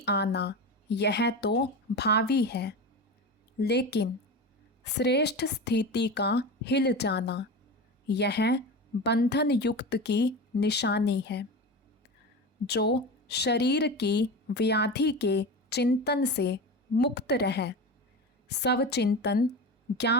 आना यह तो भावी है, लेकिन श्रेष्ठ स्थिति का हिल जाना यह बंधन युक्त की निशानी है। जो शरीर की व्याधि के चिंतन से मुक्त रहे, सब चिंतन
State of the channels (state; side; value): normal; both; correlation 0.26